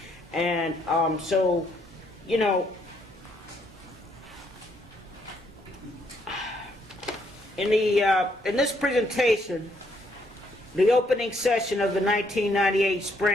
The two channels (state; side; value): normal; both; correlation 0.71